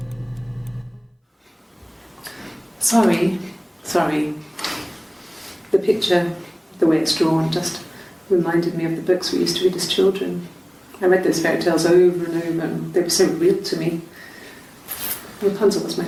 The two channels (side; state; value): both; identical; correlation 1.00